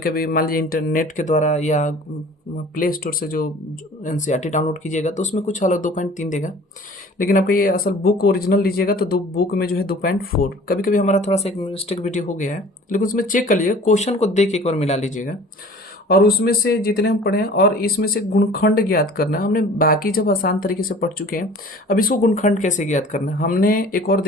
कभी मान लीजिए इंटरनेट के द्वारा या प्ले स्टोर से जो एनसीईआरटी डाउनलोड कीजिएगा तो उसमें कुछ अलग 2.3 देगा। लेकिन आपका ये असल बुक ओरिजिनल लीजिएगा तो दो बुक में जो है 2.4। कभी कभी हमारा थोड़ा सा एक मिस्टेक वीडियो हो गया है, लेकिन उसमें चेक कर लीजिएगा, क्वेश्चन को देख के एक बार मिला लीजिएगा और उसमें से जितने हम पढ़े हैं और इसमें से गुणखंड ज्ञात करना है। हमने बाकी जब आसान तरीके से पढ़ चुके हैं, अब इसको गुणखंड कैसे ज्ञात करना है। हमने एक और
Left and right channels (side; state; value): both; normal; correlation 0.46